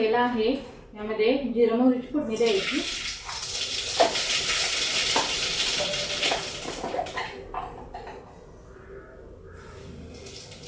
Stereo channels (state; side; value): identical; both; correlation 1.00